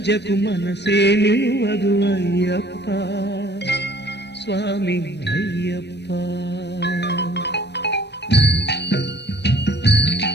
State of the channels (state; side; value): late; right; 0.50 ms